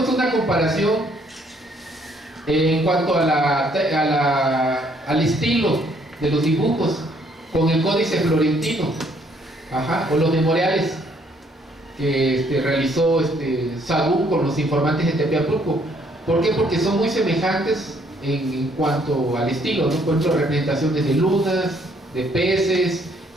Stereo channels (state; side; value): normal; both; correlation 0.66